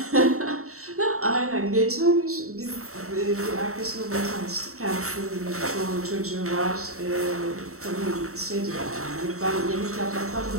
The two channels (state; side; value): late; left; 0.64 ms